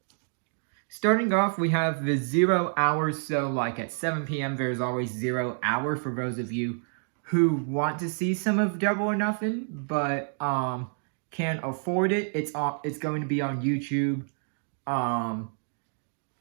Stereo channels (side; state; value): left; silent; 58 dB below the other